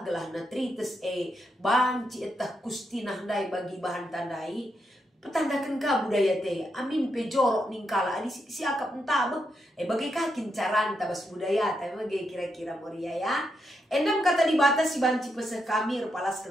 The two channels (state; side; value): normal; both; correlation 0.82